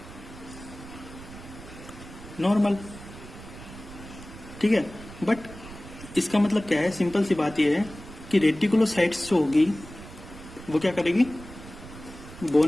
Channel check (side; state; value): right; noise; rumble, 15 dB below the sound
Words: नॉर्मल। ठीक है, बट इसका मतलब क्या है? सिंपल सी बात यह है कि रेटिकुलोसाइट्स जो होगी वो क्या करेगी?